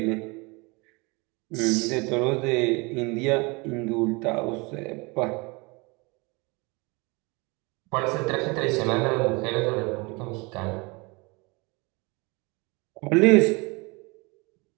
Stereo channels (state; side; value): quieter; left; 27.3 dB